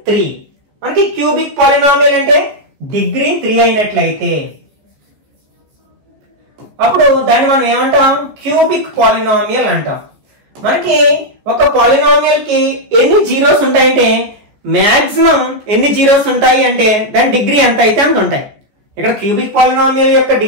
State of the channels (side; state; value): left; late; 14 ms